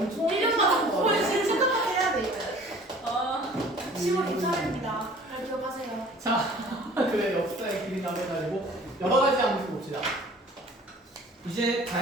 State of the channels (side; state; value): both; normal; correlation 0.49